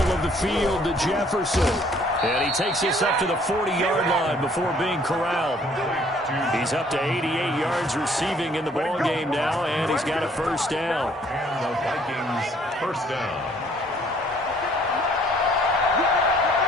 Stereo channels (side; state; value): both; normal; correlation 0.60